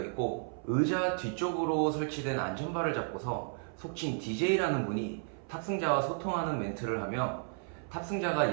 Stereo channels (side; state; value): left; silent; 56 dB below the other